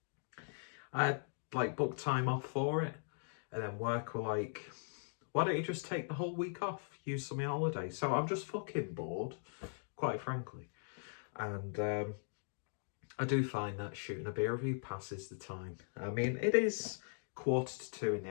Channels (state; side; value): silent; right; digital silence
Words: I had booked time off for it, and then work were like, why don't you just take the whole week off, use some of your holiday? So I'm just fucking bored, quite frankly, and I do find that shooting a beer review passes the time. I mean, it is 1:45 in the